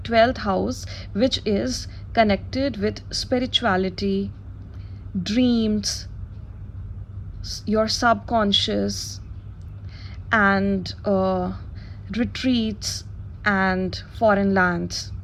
12th house, which is connected with spirituality, dreams, your subconscious, and retreats and foreign lands.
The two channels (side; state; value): both; identical; correlation 1.00